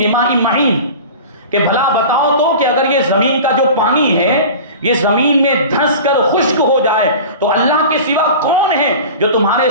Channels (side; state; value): both; inverted; correlation -0.36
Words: مَّعِينٍ، کہ بھلا بتاؤ تو کہ اگر یہ زمین کا جو پانی ہے یہ زمین میں دھنس کر خشک ہو جائے تو اللہ کے سوا کون ہے جو تمہارے